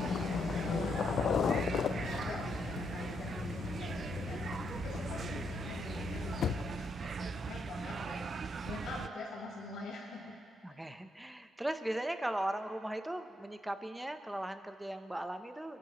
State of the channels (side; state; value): both; normal; correlation 0.78